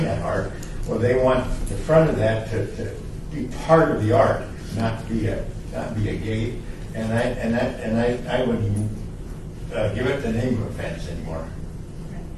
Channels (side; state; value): both; identical; correlation 1.00